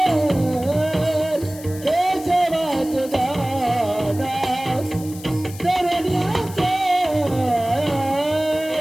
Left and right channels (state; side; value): noise; left; hiss, 17 dB below the sound